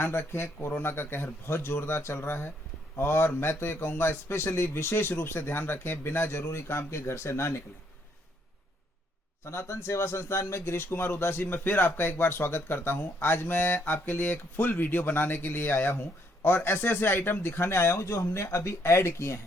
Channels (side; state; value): both; normal; correlation 0.71